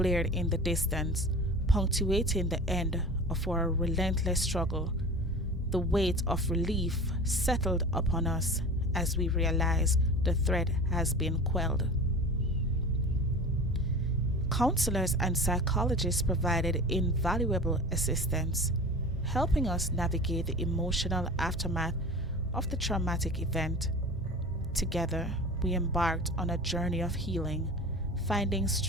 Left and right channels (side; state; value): both; normal; correlation 0.36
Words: in the distance, punctuating the end of our relentless struggle. The weight of relief settled upon us as we realized the threat has been quelled. Counselors and psychologists provided invaluable assistance, helping us navigate the emotional aftermath of the traumatic event. Together, we embarked on a journey of healing, finding